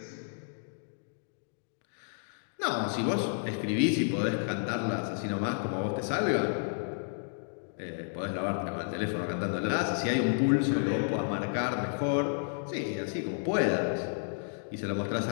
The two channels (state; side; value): silent; right; digital silence